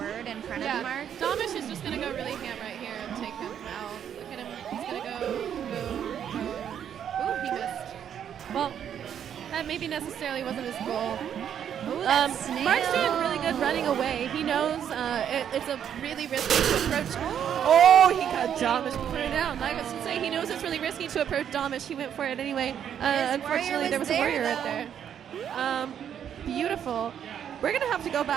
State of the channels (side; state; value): left; quieter; 9.0 dB